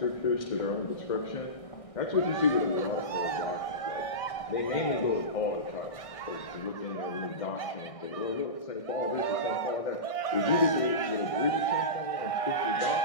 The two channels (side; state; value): right; late; 1.6 ms